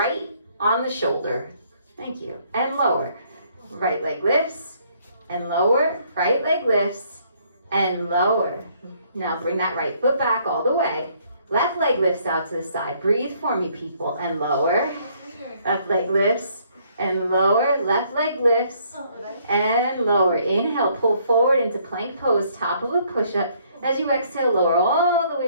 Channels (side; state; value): both; inverted; correlation -0.65